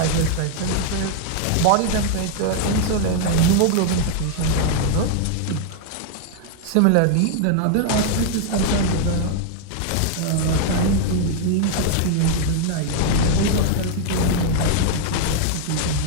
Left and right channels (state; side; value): different; both; correlation -0.01